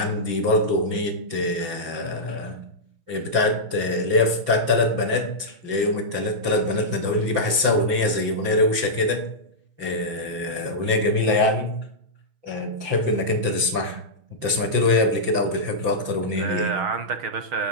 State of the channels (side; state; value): left; late; 5.9 ms